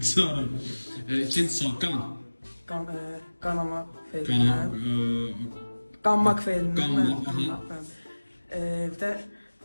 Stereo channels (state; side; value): inverted; both; correlation -1.00